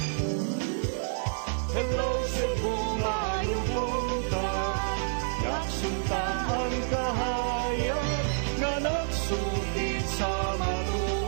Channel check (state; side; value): silent; left; digital silence